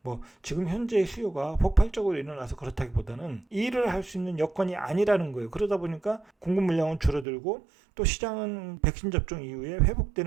뭐 지금 현재 수요가 폭발적으로 일어나서 그렇다기보다는 일을 할 수 있는 여건이 아니라는 거예요. 그러다 보니까 공급 물량은 줄어들고 또 시장은 백신 접종 이후에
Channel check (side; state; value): left; drops out; at 7.2 s